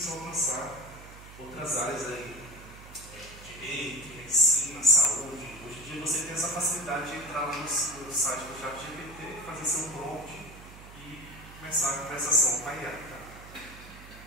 a alcançar outras áreas aí, direito, medicina, saúde. Hoje em dia você tem essa facilidade de entrar lá no site do ChatGPT, fazer seu prompt e começar a conversação com a IA. Tá?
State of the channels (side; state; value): right; noise; hum, 17 dB below the sound